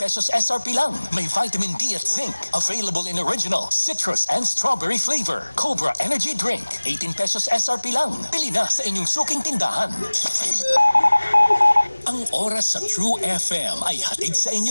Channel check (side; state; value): both; inverted; correlation -1.00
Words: SRP lang. May vitamin D at zinc. Available in original, citrus, and strawberry flavor. Cobra Energy Drink. 18 pesos SRP lang. Pili na sa inyong suking tindahan. Ang oras sa True FM ay hatid sa inyo